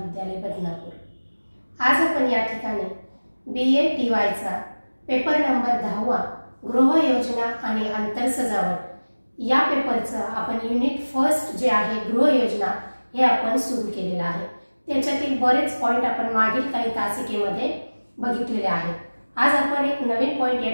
बदनापूर. आज आपण या ठिकाणी BA TYचा पेपर नंबर 10वा गृह योजना आणि आंतर सजावट या पेपरचा आपण युनिट फर्स्ट जे आहे गृह योजना हे आपण सुरू केलेला आहे. त्याच्यातील बरेच पॉइंट आपण मागील काही तासिकेमध्ये बघितलेले आहेत. आज आपण एक नवीन पॉइंट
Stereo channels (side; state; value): both; inverted; correlation -1.00